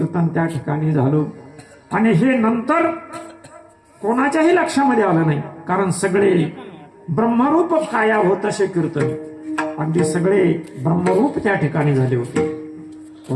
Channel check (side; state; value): both; identical; correlation 1.00